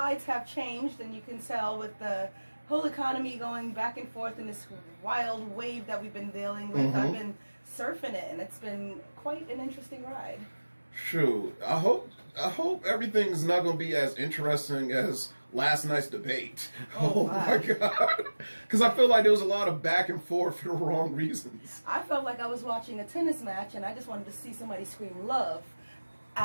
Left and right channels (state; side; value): inverted; both; correlation -1.00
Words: have changed, and you can tell with the whole economy going back and forth in this wild wave that we've been dealing with. I've been surfing it, and it's been quite an interesting ride. True. I hope everything's not going to be as interesting as last night's debate. Oh my God. Because I feel like there was a lot of back and forth for the wrong reasons. I felt like I was watching a tennis match, and I just wanted to see somebody scream love